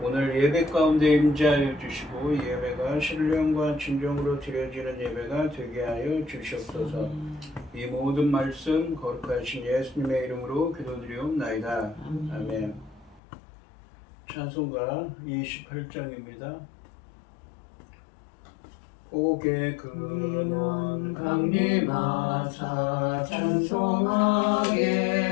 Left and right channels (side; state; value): right; drops out; at 13.2 s